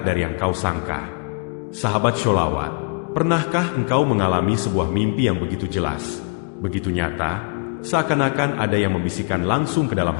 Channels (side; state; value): right; quieter; 34.7 dB